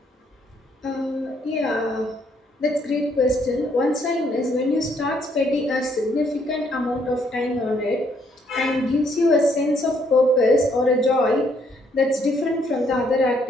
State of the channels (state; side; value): normal; both; correlation 0.69